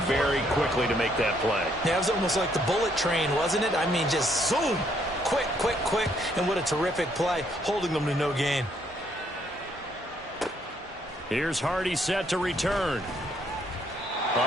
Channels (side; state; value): both; normal; correlation 0.70